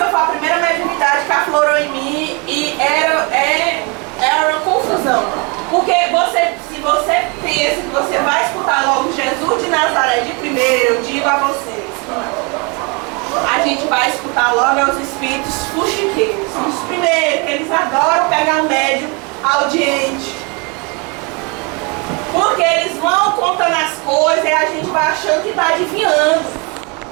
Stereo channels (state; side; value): quieter; left; 31.1 dB